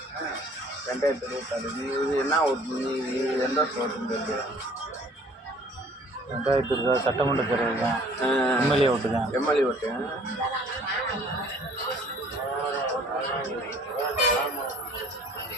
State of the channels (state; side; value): normal; both; correlation 0.54